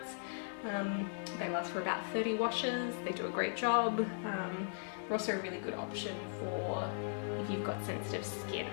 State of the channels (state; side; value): silent; right; digital silence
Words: They last for about 30 washes. They do a great job. They're also a really good option for if you've got sensitive skin